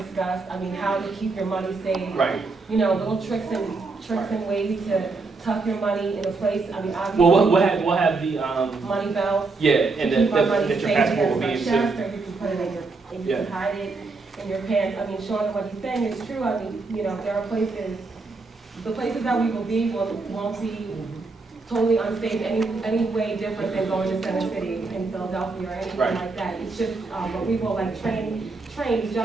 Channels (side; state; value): left; quieter; 3.9 dB